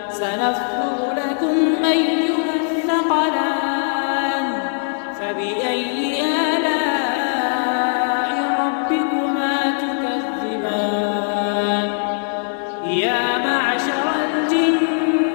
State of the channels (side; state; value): right; silent; digital silence